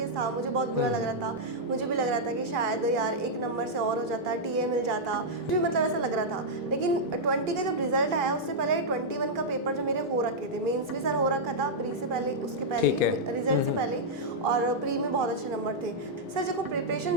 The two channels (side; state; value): both; normal; correlation -0.07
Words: था, मुझे बहुत बुरा लग रहा था। मुझे भी लग रहा था कि शायद यार एक नंबर से और हो जाता, टीए मिल जाता, मुझे मतलब ऐसा लग रहा था। लेकिन 20 का जब रिजल्ट आया उससे पहले 21 का पेपर जो मेरे हो रखे थे, मेंस भी सर हो रखा था प्री से पहले, उसके पहले ठीक है। रिजल्ट से पहले, और प्री में बहुत अच्छे नंबर थे। सर देखो